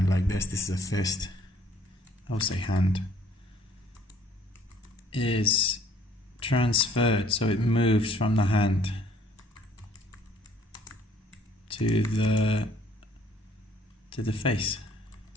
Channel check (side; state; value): both; normal; correlation 0.59